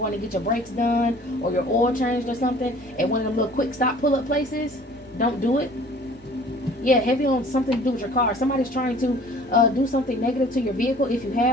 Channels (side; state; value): both; normal; correlation 0.50